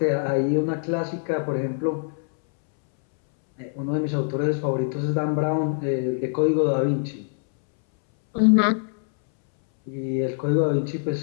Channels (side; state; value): right; silent; 63 dB below the other